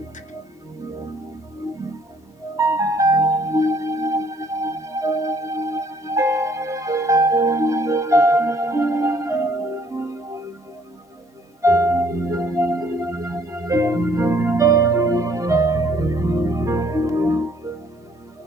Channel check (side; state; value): both; normal; correlation 0.63